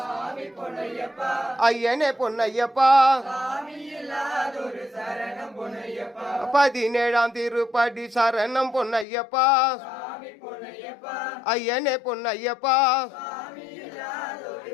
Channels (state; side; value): drops out; right; at 9.1 s